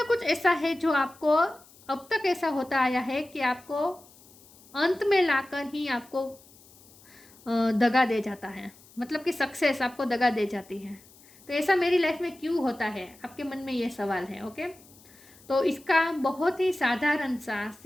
कुछ ऐसा है जो आपको अब तक ऐसा होता आया है कि आपको अंत में लाकर ही आपको दगा दे जाता है, मतलब कि सक्सेस आपको दगा दे जाती है। तो ऐसा मेरी लाइफ में क्यों होता है, आपके मन में ये सवाल है। ओके, तो इसका बहुत ही साधारण सा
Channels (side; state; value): left; noise; hiss, 25 dB below the sound